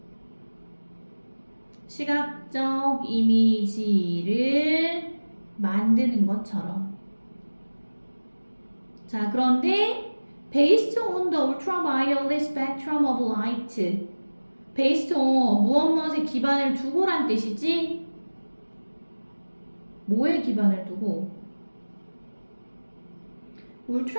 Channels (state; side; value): inverted; both; correlation -1.00